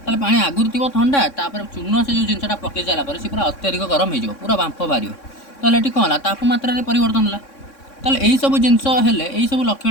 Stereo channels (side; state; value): right; late; 3.6 ms